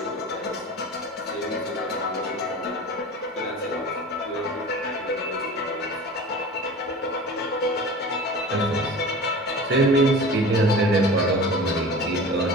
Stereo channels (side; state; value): both; normal; correlation 0.37